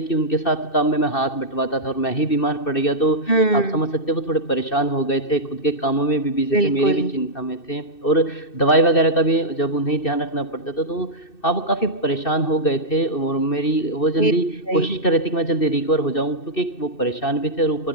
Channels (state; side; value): late; right; 2.6 ms